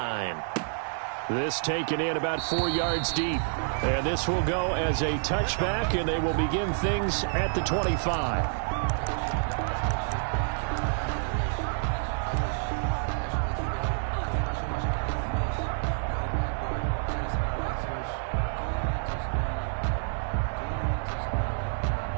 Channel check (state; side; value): silent; left; digital silence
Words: This taken in about 4 yards deep. And this will go as a touchback, and they will begin things at the 25.